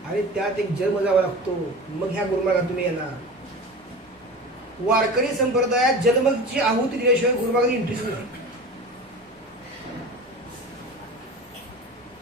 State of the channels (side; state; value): both; normal; correlation 0.33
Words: आणि त्यात एक जन्म जावा लागतो, मग ह्या गुरुमार्गात तुम्ही येणार. वारकरी संप्रदायात जन्मची आहुती दिल्याशिवाय गुरुमार्गात इंटरेस्ट नाही.